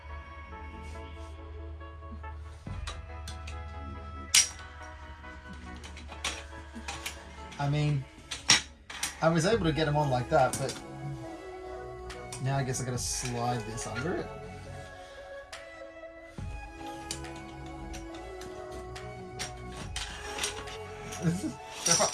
I mean, I was able to get them on like that, but now I guess I gotta slide this under it.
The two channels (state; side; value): identical; both; correlation 1.00